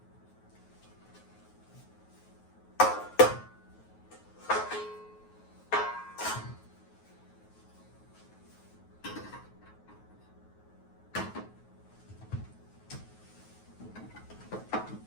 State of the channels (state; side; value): late; right; 9.4 ms